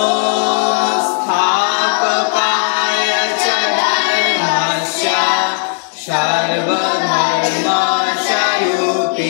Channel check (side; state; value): right; silent; digital silence